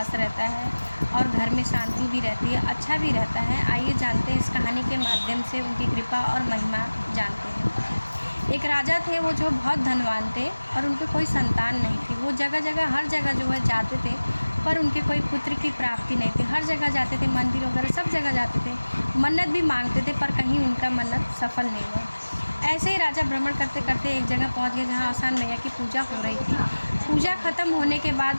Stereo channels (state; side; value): inverted; both; correlation -1.00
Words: रहता है और घर में शांति भी रहती है, अच्छा भी रहता है। आइए जानते हैं इस कहानी के माध्यम से उनकी कृपा और महिमा जानते हैं। एक राजा थे, वो जो बहुत धनवान थे और उनके कोई संतान नहीं थी। वो जगह जगह हर जगह जो है जाते थे, पर उनके कोई पुत्र की प्राप्ति नहीं थी। हर जगह जाते थे, मंदिर वगैरह सब जगह जाते थे, मन्नत भी मांगते थे, पर कहीं उनका मन्नत सफल नहीं हुआ। ऐसे ही राजा भ्रमण करते करते एक जगह पहुंच गए जहां आसान मैया की पूजा हो रही थी। पूजा ख़त्म होने के